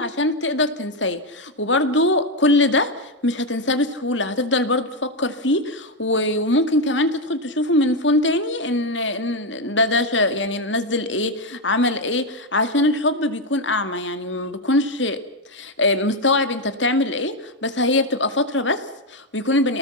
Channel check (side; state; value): both; normal; correlation 0.06